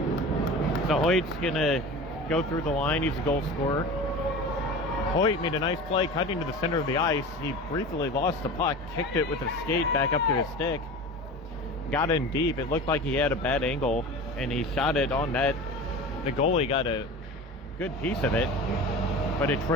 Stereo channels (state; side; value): normal; both; correlation 0.34